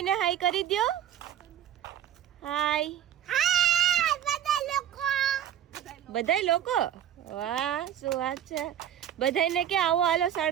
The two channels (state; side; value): quieter; left; 10.6 dB